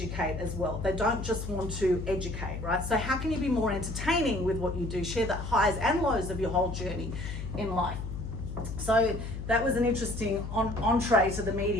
as well. They don't just want to educate, right? So how can you be more entertaining with what you do? Share the highs and lows of your whole journey in life. So that was an interesting entree to the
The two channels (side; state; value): left; noise; hum, 7 dB below the sound